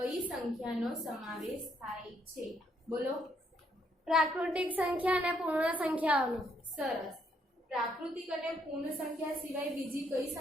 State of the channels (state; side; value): normal; both; correlation 0.72